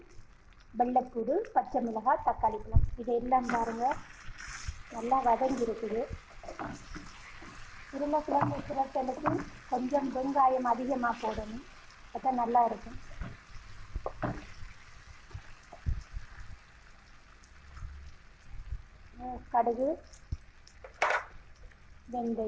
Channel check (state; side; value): identical; both; correlation 1.00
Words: வெள்ளைப்பூடு, பச்சை மிளகாய், தக்காளி பழம் இதெல்லாம் பாருங்க நல்லா வதங்கி இருக்குது. உருளைக்கிழங்கு புரட்டலுக்கு கொஞ்சம் வெங்காயம் அதிகமாக போடணும், அப்போ நல்லா இருக்கும். கடுகு,